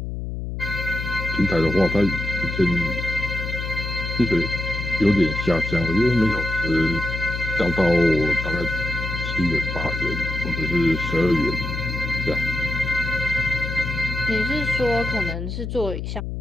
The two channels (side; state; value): left; noise; hum, 5 dB below the sound